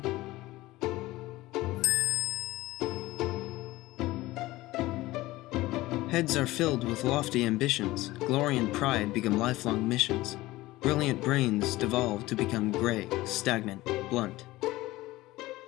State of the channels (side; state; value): right; quieter; 18.3 dB